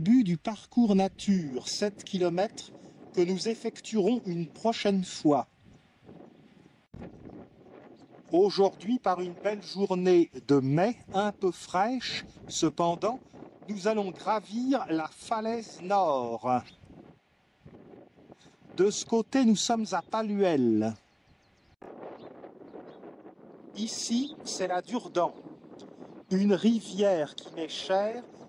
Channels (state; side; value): identical; both; correlation 1.00